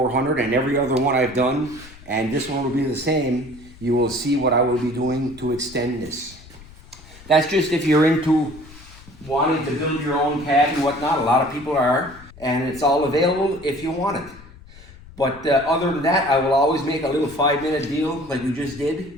and every other one I've done, and this one will be the same, you will see what I will be doing to extend this. That's just if you're into wanting to build your own cab and whatnot. A lot of people are, and it's all available if you want it. But other than that, I will always make a little 5-minute deal like you just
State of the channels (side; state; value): left; noise; rumble, 20 dB below the sound